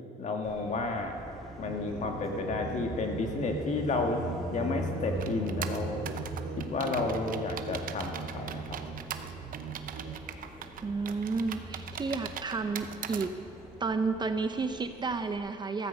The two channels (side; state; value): both; normal; correlation 0.49